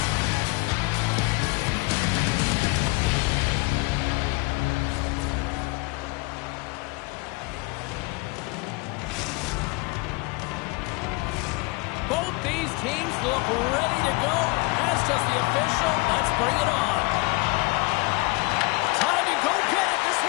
Both these teams look ready to go, as does the official. Let's bring it on. Time to go get it. This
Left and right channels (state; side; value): quieter; right; 26.1 dB